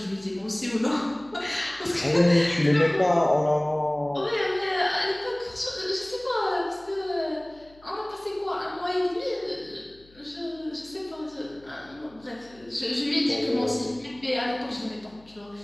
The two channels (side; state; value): left; noise; hum, 27 dB below the sound